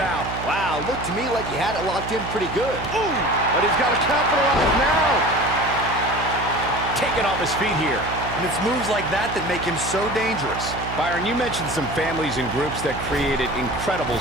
Wow, looked to me like he had it locked in pretty good. Ooh, but he's got to capitalize now. Taking off his feet here. And it's moves like that that make him so dangerous. Byron, you mentioned some families and groups that created incredible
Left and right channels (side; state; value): right; noise; hum, 9 dB below the sound